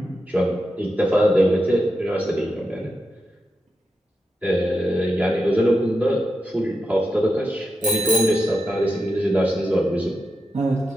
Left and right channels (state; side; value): normal; both; correlation 0.87